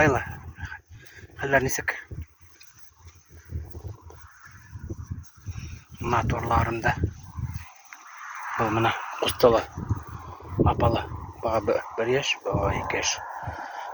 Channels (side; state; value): both; identical; correlation 1.00